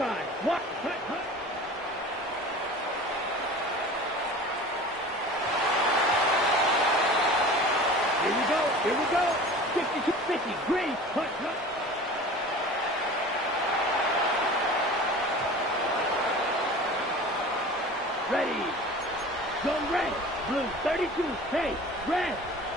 What? Hut, hut. Here we go. Here we go. 62, 50. Green. Hut, hut. Ready. Go red. Blue. 32. Hey, red.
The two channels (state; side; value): normal; both; correlation 0.39